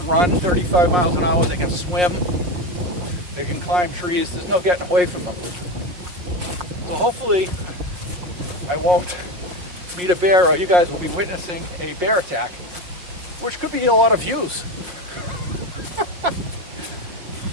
run 35 miles an hour, they can swim, they can climb trees, there's no getting away from them. So hopefully I won't meet a bear, or you guys will be witnessing a bear attack, which could be a lot of views.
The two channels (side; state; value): left; late; 5.9 ms